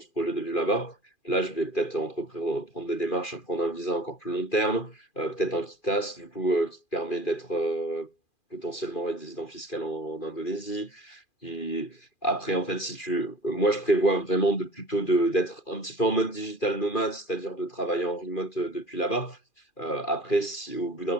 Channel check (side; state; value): right; late; 2.4 ms